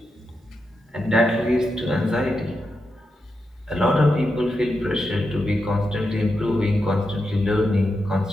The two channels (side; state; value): both; normal; correlation 0.87